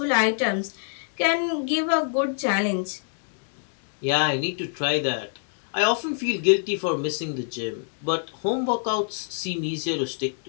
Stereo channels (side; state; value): right; silent; 61 dB below the other